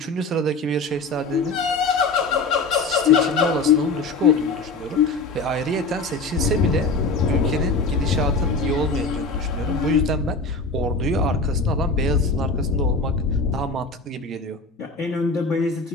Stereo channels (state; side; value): quieter; right; 3.5 dB